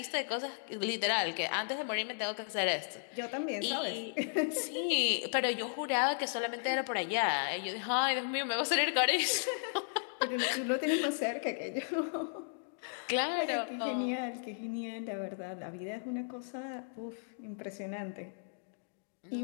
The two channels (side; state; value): right; silent; digital silence